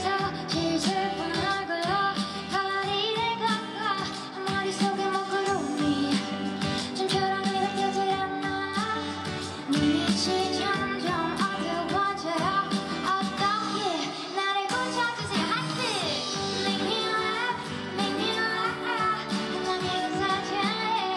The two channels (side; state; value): both; identical; correlation 1.00